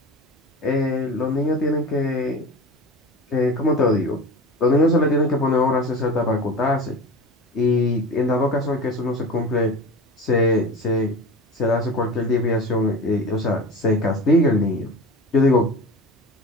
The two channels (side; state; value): both; normal; correlation 0.33